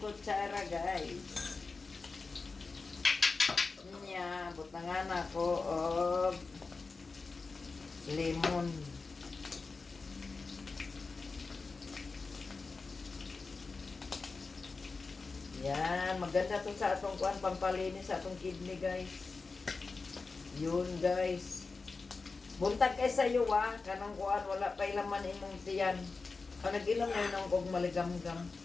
guys. Niya, butangan ako og lemon. Yan, maganda to sa atong kuan pampalinis sa atong kidney guys. Yun guys. Buntag kay sa iyo kanang kuan wala pa laman imong tiyan. Ang nag-inom na yun kog maligam-gam.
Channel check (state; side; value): quieter; right; 4.2 dB